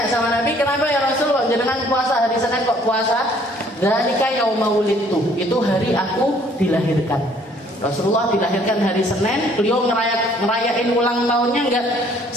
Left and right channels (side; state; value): both; normal; correlation 0.60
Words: sama Nabi, kenapa ya Rasul kok jenengan puasa hari Senin kok puasa? Dzalika yauma wulidtu, itu hari aku dilahirkan. Rasulullah dilahirkan hari Senin, beliau ngerayain ulang tahunnya enggak